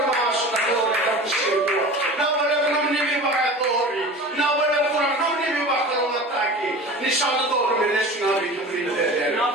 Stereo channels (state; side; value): normal; both; correlation 0.36